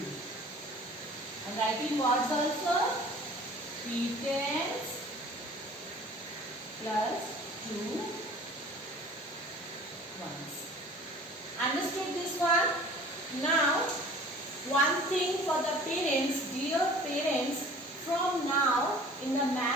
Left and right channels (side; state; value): both; normal; correlation 0.47